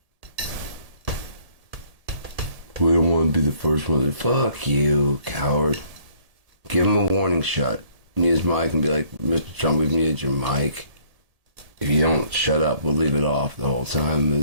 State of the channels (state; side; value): late; left; 1.7 ms